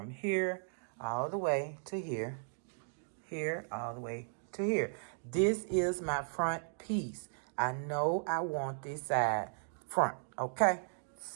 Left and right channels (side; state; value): left; silent; digital silence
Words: here all the way to here, here all the way to here. This is my front piece. I know I want this side front, okay?